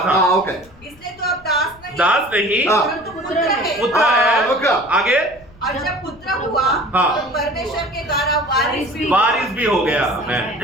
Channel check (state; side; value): noise; left; rumble, 25 dB below the sound